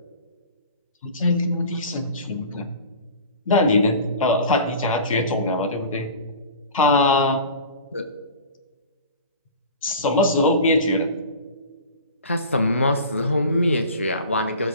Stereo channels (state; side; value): inverted; both; correlation -0.38